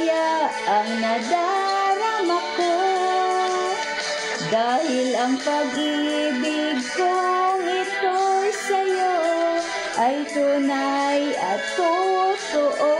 ang nadarama ko. Dahil ang pag-ibig kong ito'y sa'yo ay tunay at totoo.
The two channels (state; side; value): identical; both; correlation 1.00